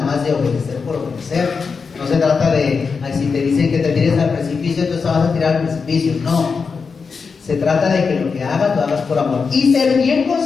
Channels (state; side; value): quieter; right; 5.2 dB